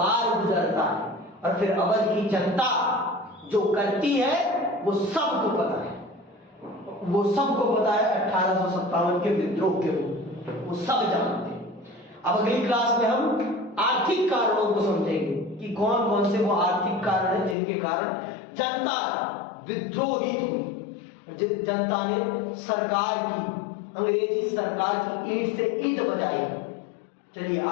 गुजरता है। और फिर अवध की जनता जो करती है वो सबको पता है, वो सबको पता है 1857 के विद्रोह के रूप, वो सब जानते हैं। अब अगली क्लास में हम आर्थिक कारणों को समझेंगे कि कौन कौन से वो आर्थिक कारण हैं जिनके कारण जनता विद्रोहित हुई, जनता ने सरकार की, अंग्रेजी सरकार की ईंट से ईंट बजाई। चलिए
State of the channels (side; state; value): right; drops out; at 17.6 s